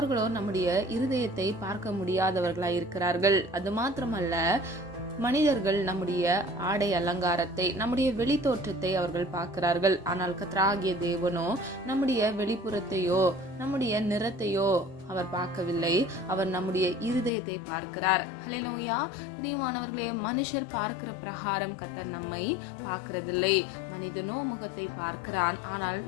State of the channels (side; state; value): right; drops out; at 17.3 s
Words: நம்முடைய இருதயத்தை பார்க்க முடியாதவர்களாய் இருக்கிறார்கள். அது மாத்திரமல்ல, மனிதர்கள் நம்முடைய ஆடை அலங்காரத்தை, நம்முடைய வெளி தோற்றத்தை அவர்கள் பார்க்கிறார்கள். ஆனால் கர்த்தராகிய தேவனோ நம்முடைய வெளிப்புறத்தையோ நம்முடைய நிறத்தையோ அவர் பார்க்கவில்லை. அவர் நம்முடைய இருதயத்தை பார்க்கிறார். ஹல்லேலூயா. பிரியமானவர்களே, மனுஷர் பார்க்கிற பிரகாரம் கர்த்தர் நம்மை பார்க்கிறதில்லை. மனிதனோ முகத்தை பார்க்கிறான், ஆனால்